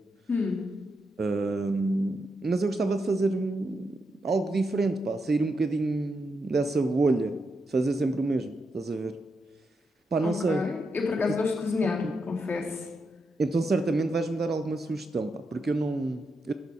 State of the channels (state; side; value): normal; both; correlation 0.84